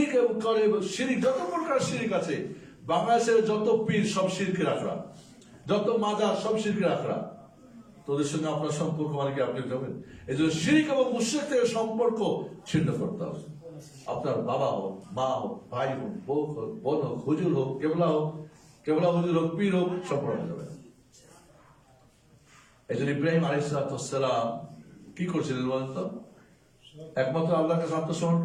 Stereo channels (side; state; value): both; identical; correlation 1.00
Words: করে, শিরিক যত প্রকার শিরিক আছে, বাংলাদেশের যত পীর সব শিরকে রাখরা, যত মাজার সব শিরকে রাখরা, তোদের সঙ্গে আপনার সম্পর্ক মানে কি আপনি যাবেন? এই জন্য শিরিক এবং মুশরিক থেকে সম্পর্ক ছিন্ন করতে হবে। আপনার বাবা হোক, মা হোক, ভাই হোক, বউ হোক, বোন হোক, হুজুর হোক, কেবলা হুজুর হোক, পীর হোক, সম্পর্ক যাবে। এই জন্য ইব্রাহিম আলাইহিস সালাম কি করছিলেন বলেন তো? একমাত্র আল্লাহর কাছে আত্মসমর্পণ